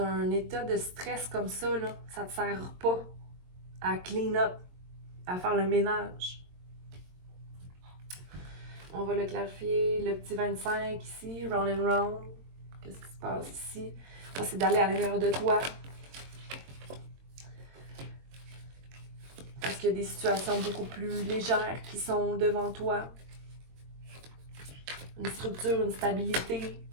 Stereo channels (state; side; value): late; left; 22 ms